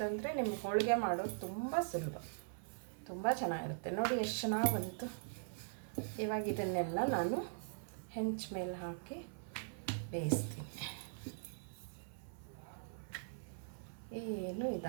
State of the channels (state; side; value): silent; left; 50 dB below the other